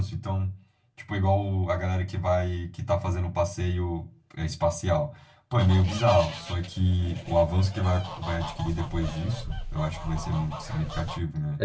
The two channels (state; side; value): identical; both; correlation 1.00